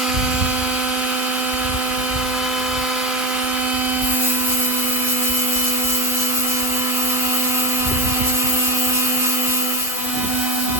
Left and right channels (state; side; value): normal; both; correlation 0.14